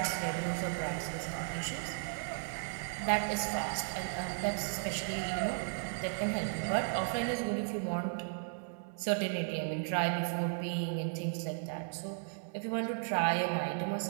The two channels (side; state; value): left; silent; digital silence